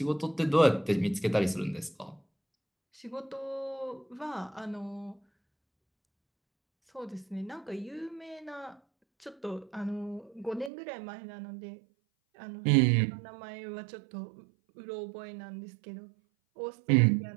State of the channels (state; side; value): drops out; left; at 10.7 s